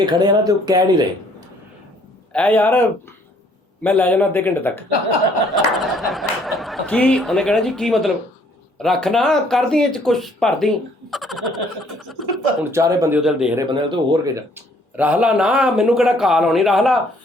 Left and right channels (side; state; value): both; normal; correlation 0.62